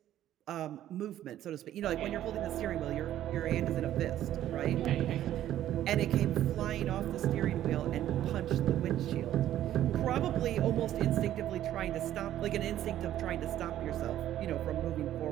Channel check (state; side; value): quieter; left; 12.3 dB